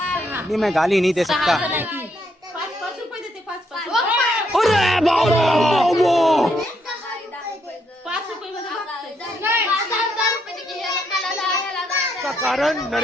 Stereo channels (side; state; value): both; normal; correlation 0.75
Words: नहीं मैं गाली नहीं दे 6 सकता। जण आहे ती 5 रुपये देते 5 अरे बाबा 5 रुपये मध्ये बघते. का कारण